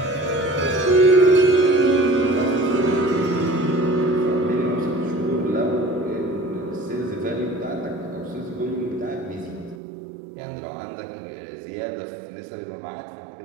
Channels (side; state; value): left; drops out; at 9.8 s